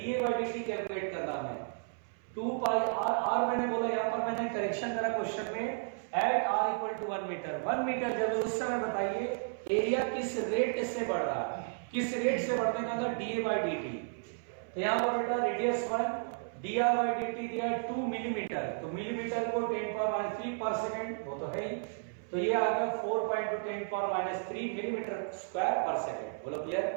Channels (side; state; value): left; silent; 56 dB below the other